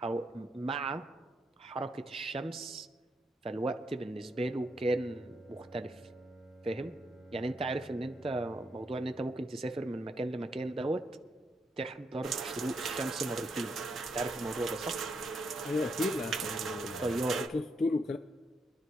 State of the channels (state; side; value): normal; both; correlation 0.78